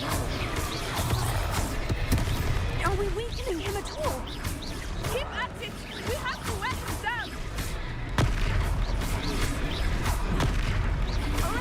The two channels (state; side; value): identical; both; correlation 1.00